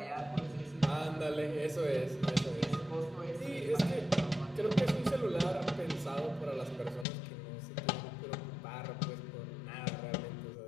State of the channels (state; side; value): drops out; right; at 7.1 s